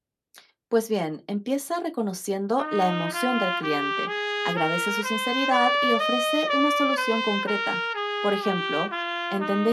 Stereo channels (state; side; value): identical; both; correlation 1.00